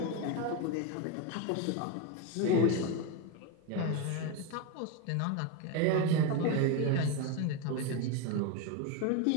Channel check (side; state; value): both; different; correlation 0.03